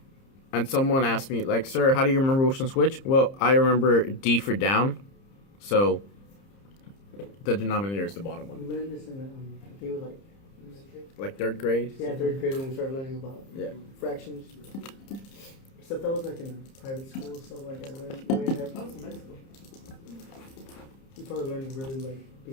And someone asked me, like, sir, how do you remember which one's which? Well, I remember D for down, so the denominator is the bottom We one. learned this in, I think it was Like 3rd grade? yeah, 3rd grade when we started learning about Yeah. fractions. Except that was like in private school, so like I learned way ahead. That was in Mexico. You probably learned really like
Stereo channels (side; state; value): right; late; 30 ms